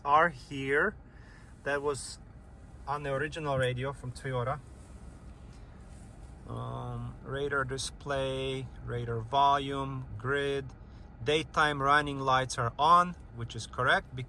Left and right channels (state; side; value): identical; both; correlation 1.00